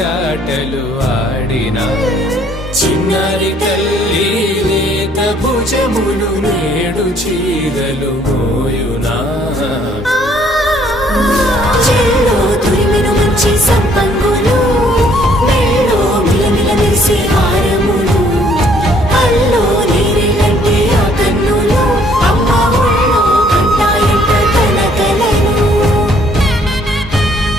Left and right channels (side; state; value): both; normal; correlation 0.63